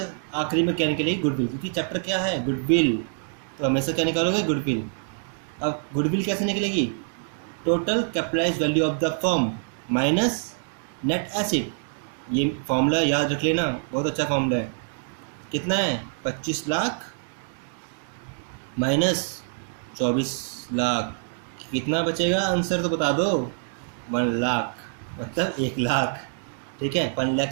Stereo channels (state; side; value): silent; left; digital silence